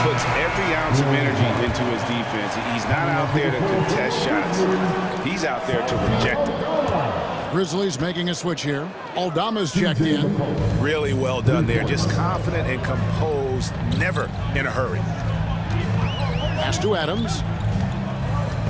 puts every ounce of energy into his defense. He's not out there to contest shots. He's out there to reject them. Grizzlies making a switch here. Aldama's checked in. Really well done there. Just confident and composed, never in a hurry. Pass to Adams.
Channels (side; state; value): both; identical; correlation 1.00